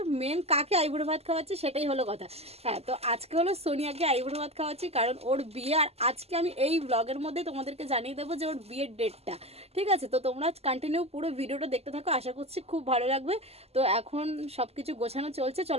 মেন কাকে আইবুড়ো ভাত খাওয়াচ্ছি সেটাই হলো কথা। হ্যাঁ, তো আজকে হলো সোনিয়াকে আইবুড়ো ভাত খাওয়াচ্ছি, কারণ ওর বিয়ে। আর আজকে আমি এই ব্লগের মধ্যে তোমাদেরকে জানিয়ে দেবো যে ওর বিয়ের ডেটটা। ঠিক আছে, তো তোমরা কন্টিনিউ পুরো ভিডিওটা দেখতে থাকো, আশা করছি খুব ভালো লাগবে। তো এখন সব কিছু গোছানো চলছে,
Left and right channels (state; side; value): late; left; 0.29 ms